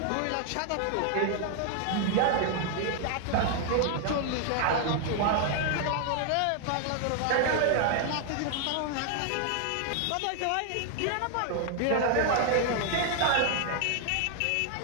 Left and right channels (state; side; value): different; both; correlation 0.00